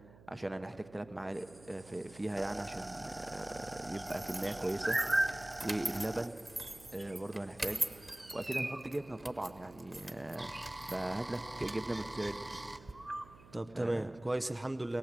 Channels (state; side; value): noise; right; hum, 21 dB below the sound